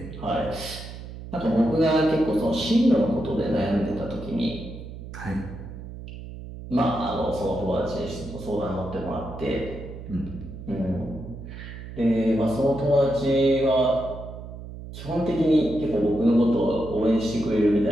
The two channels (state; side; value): noise; right; hum, 12 dB below the sound